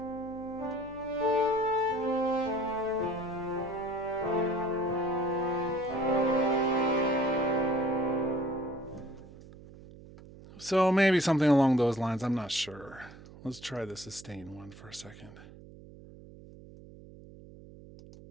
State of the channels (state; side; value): noise; right; hum, 19 dB below the sound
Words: So maybe something along those lines. I'm not sure. Let's try the sustain one for a second.